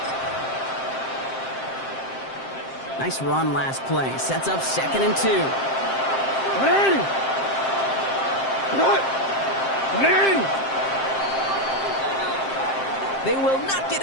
Nice run last play. Sets up 2nd and 2. They will not get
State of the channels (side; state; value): right; late; 7.6 ms